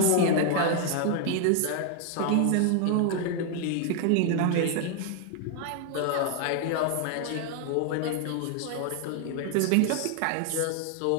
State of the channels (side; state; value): both; different; correlation 0.00